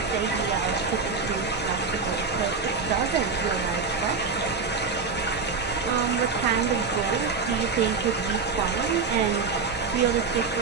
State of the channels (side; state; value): left; quieter; 4.9 dB